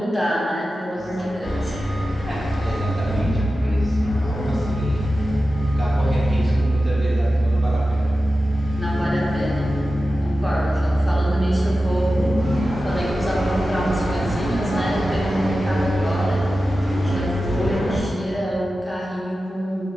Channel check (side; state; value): both; normal; correlation 0.93